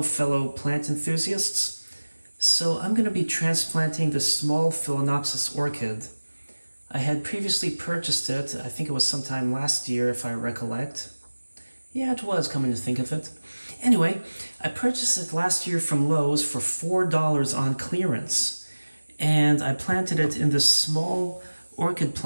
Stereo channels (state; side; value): inverted; both; correlation -1.00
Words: fellow plant enthusiasts. So I'm going to be transplanting the small Phalaenopsis orchid. I had previously purchased it, I think it was sometime last year if I recollect. Yeah, it was, coming to think of it. Anyway, I purchased it last year from Lowe's for $4 on clearance. And I planted it in this small orchid